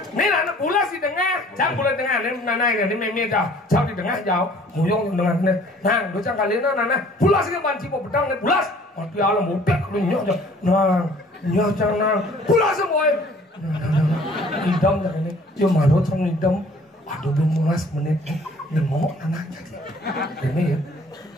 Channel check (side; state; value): both; normal; correlation 0.54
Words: Ni anak pulas di tengah, jangan pulas tengah. Ni nanai ni memang jauh di tengah jauh. Muyong dengan ni, nang, dua kali ni nana pulas ni banci pedang ni pulas. Mati alam mudah ni nyok je, nang, nyok jangan pulas semua. Idam jangan ni, dia malu sama idam. Aduh bermulas menit ni ngomong anak jadi. Ini ya.